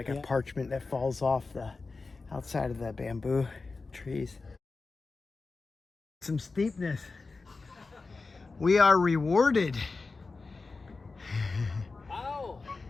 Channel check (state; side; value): quieter; right; 3.9 dB